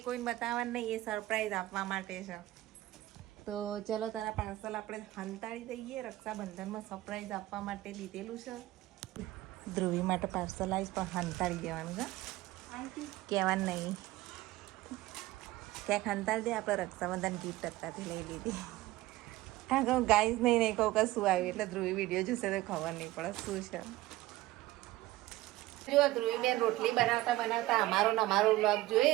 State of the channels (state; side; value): quieter; left; 17.3 dB